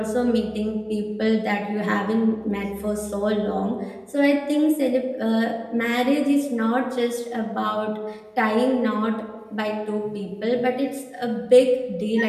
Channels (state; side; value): identical; both; correlation 1.00